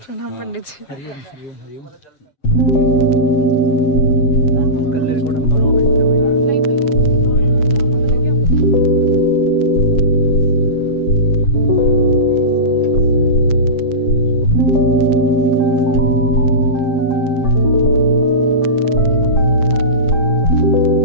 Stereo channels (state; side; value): late; right; 7.6 ms